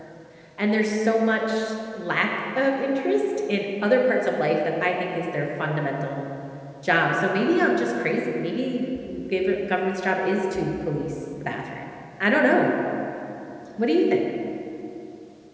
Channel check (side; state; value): both; identical; correlation 1.00